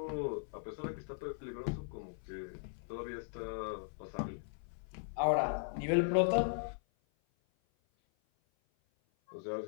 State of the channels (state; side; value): silent; right; 52 dB below the other